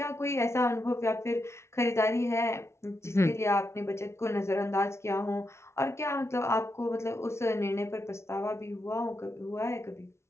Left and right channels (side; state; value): right; late; 0.13 ms